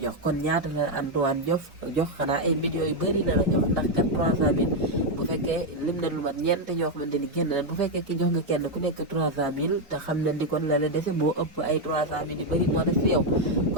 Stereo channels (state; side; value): normal; both; correlation 0.03